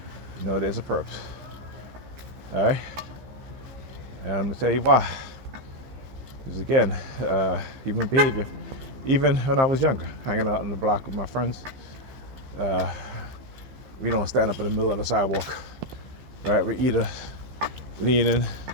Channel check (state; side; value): late; left; 15 ms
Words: you know there's a perps. All right, and I'm gonna tell you why. Because again, human behavior. Even when I was younger, hanging out on the block with my friends, we don't stand up in the middle of the sidewalk, right? We either leaning